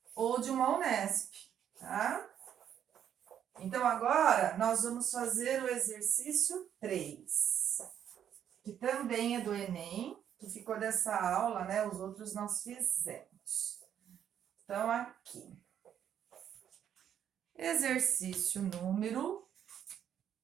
ou de uma UNESP, tá? Então, agora, nós vamos fazer o exercício 3, que também é do Enem, que ficou dessa aula, né? Os outros nós fizemos. Então, aqui. Exercício número,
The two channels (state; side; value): quieter; left; 9.4 dB